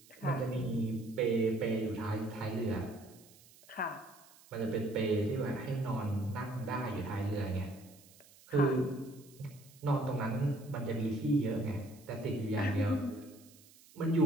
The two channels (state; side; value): noise; right; hiss, 24 dB below the sound